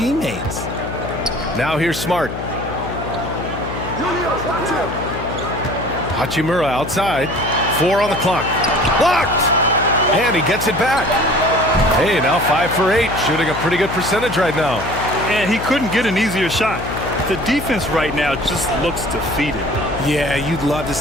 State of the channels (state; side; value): noise; left; hum, 8 dB below the sound